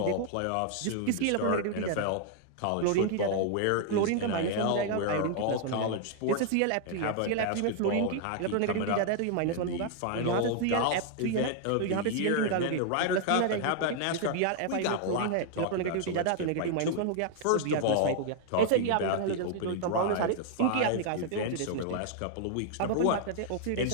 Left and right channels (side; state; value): both; different; correlation 0.00